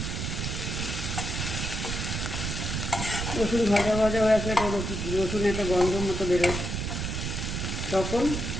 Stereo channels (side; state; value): right; noise; rumble, 3 dB below the sound